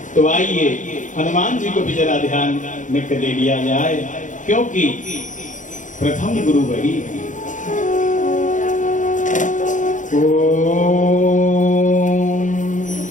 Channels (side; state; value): right; late; 0.37 ms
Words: तो आइए हनुमान जी को भी जरा ध्यान में ले लिया जाए, क्योंकि प्रथम गुरु वही है। ओम